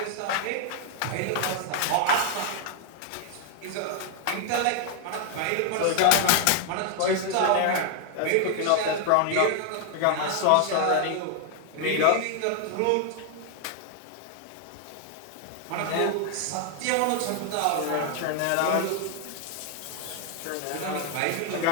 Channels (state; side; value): different; both; correlation 0.00